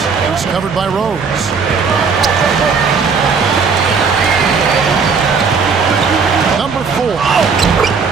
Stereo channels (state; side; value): quieter; left; 5.4 dB